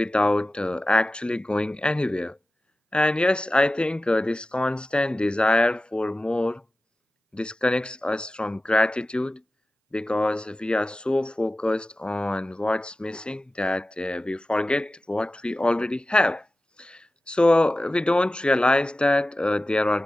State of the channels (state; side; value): normal; both; correlation 0.95